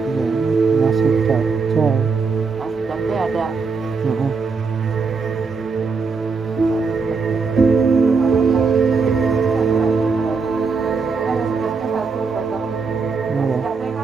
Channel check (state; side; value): quieter; left; 4.8 dB